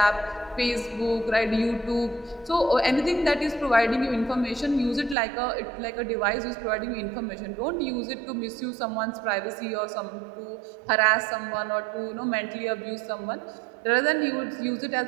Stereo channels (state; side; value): drops out; left; at 5.2 s